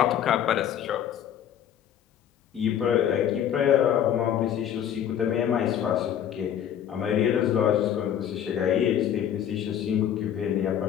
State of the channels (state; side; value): quieter; right; 9.7 dB